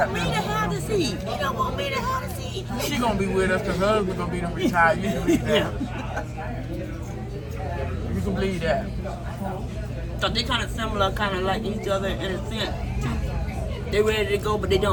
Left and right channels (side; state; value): both; identical; correlation 1.00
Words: me to have the seat. He don't want me to have the seat. She gonna be with us because her husband gonna be the retired. You can believe that. You can believe that. So they kind of similar, kind of like each other in a sense. They ready to go, but they